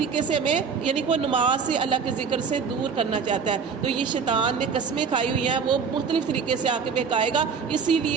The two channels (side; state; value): left; quieter; 6.0 dB